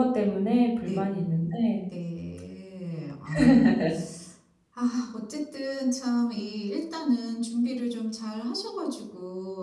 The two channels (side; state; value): both; identical; correlation 1.00